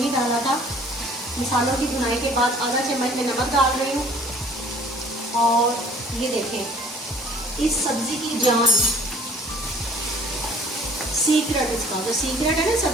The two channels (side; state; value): both; normal; correlation 0.52